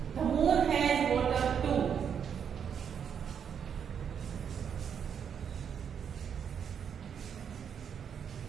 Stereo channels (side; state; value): left; quieter; 7.7 dB